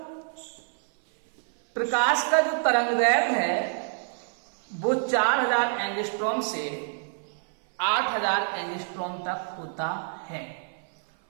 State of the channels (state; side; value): silent; left; 57 dB below the other